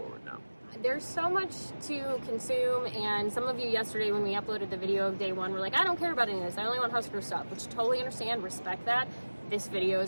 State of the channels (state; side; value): inverted; both; correlation -1.00